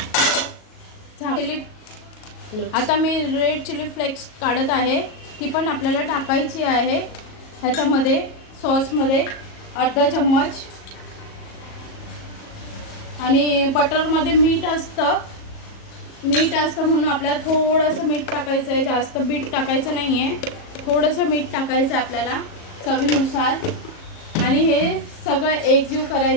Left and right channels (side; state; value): right; late; 37 ms